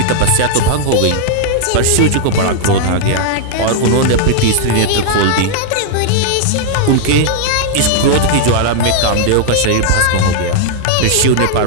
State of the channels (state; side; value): different; both; correlation 0.00